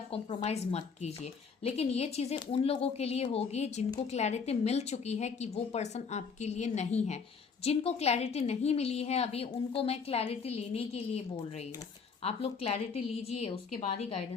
कॉम्प्रोमाइज मत कीजिए। लेकिन ये चीजें उन लोगों के लिए होगी जिनको क्लैरिटी मिल चुकी है कि वो पर्सन आपके लिए नहीं है। जिनको क्लैरिटी नहीं मिली है अभी, उनको मैं क्लैरिटी लेने के लिए बोल रही हूँ। आप लोग क्लैरिटी लीजिए, उसके बाद ही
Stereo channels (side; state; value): right; quieter; 5.6 dB